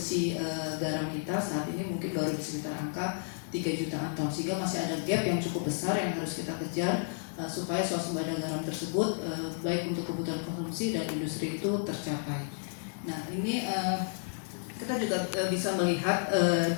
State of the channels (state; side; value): silent; right; digital silence